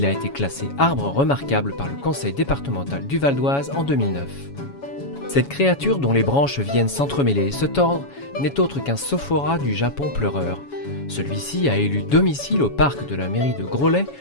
a été classé arbre remarquable par le conseil départemental du Val d'Oise en 2009. Cette créature dont les branches viennent s'entremêler et se tordre n'est autre qu'un sophora du Japon pleureur. Celui-ci a élu domicile au parc de la mairie de Groslay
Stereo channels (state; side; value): late; right; 7.2 ms